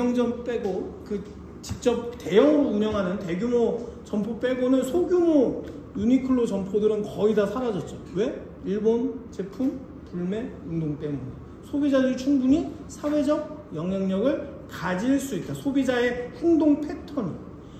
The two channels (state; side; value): identical; both; correlation 1.00